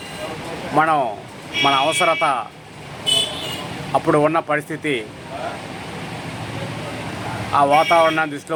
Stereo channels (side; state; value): both; identical; correlation 1.00